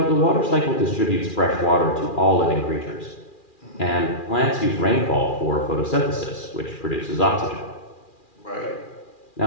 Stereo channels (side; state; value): right; late; 2.4 ms